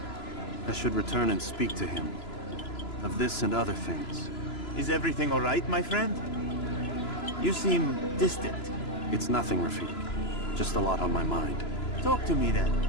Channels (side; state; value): right; late; 3.0 ms